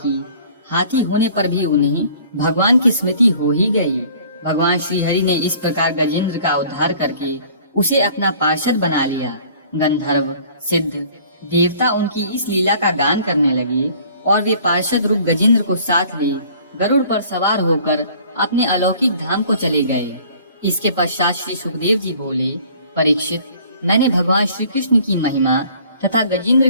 हाथी होने पर भी उन्हें भगवान की स्मृति हो ही गई। भगवान श्री हरि ने इस प्रकार गजेंद्र का उद्धार करके उसे अपना पार्षद बना लिया। गंधर्व, सिद्ध, देवता उनकी इस लीला का गान करने लगे और वे पार्षद रूप गजेंद्र को साथ ले गरुड़ पर सवार होकर अपने अलौकिक धाम को चले गए। इसके पश्चात श्री सुखदेव जी बोले, परीक्षित, मैंने भगवान श्री कृष्ण की महिमा तथा गजेंद्र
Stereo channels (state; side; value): inverted; both; correlation -0.53